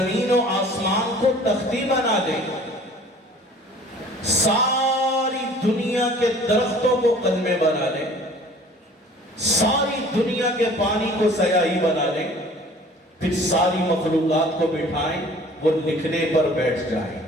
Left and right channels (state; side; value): normal; both; correlation 0.49